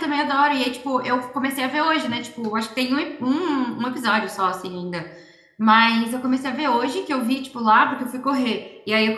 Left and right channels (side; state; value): both; identical; correlation 1.00